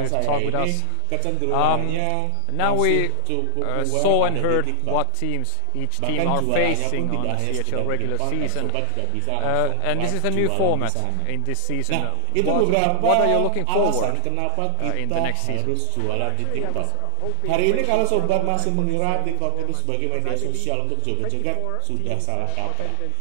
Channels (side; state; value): both; different; correlation 0.00